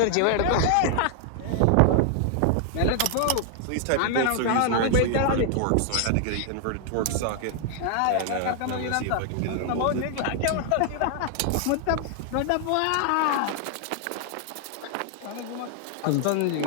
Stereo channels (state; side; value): different; both; correlation 0.00